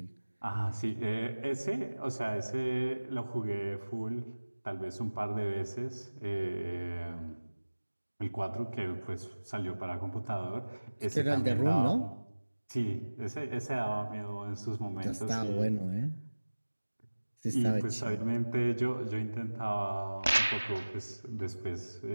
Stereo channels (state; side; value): inverted; both; correlation -1.00